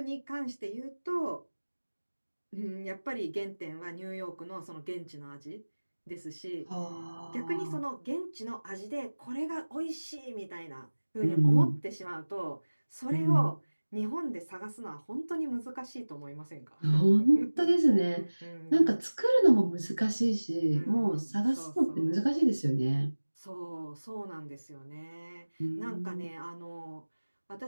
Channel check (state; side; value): inverted; both; correlation -1.00